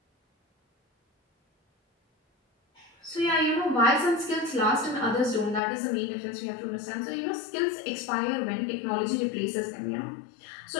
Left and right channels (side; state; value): right; drops out; at 5.6 s